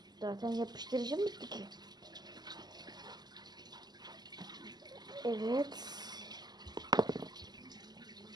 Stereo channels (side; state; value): left; late; 0.20 ms